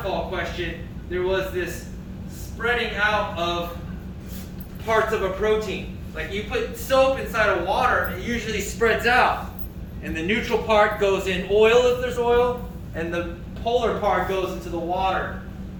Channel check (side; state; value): both; identical; correlation 1.00